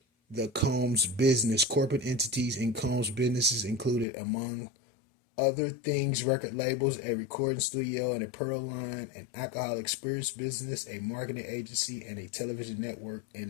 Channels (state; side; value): drops out; right; at 4.0 s